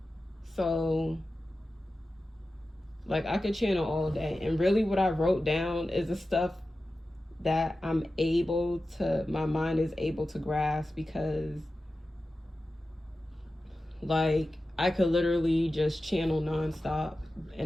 So like I could channel all day. And really what I wrote down is the stuff that my mind is able to grasp, because like I could literally just channel nonstop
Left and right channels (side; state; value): both; normal; correlation 0.94